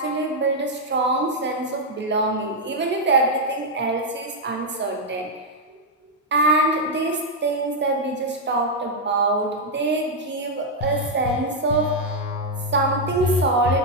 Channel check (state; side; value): normal; both; correlation -0.01